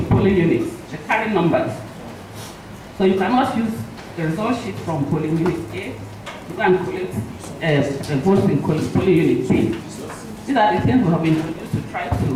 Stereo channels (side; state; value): both; identical; correlation 1.00